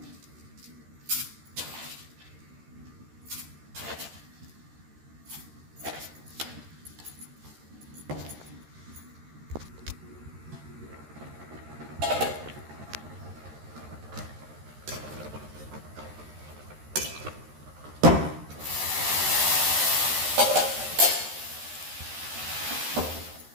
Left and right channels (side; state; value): left; late; 13 ms